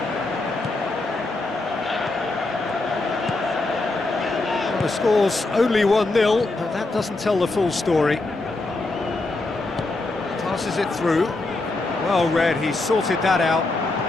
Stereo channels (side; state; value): right; quieter; 3.1 dB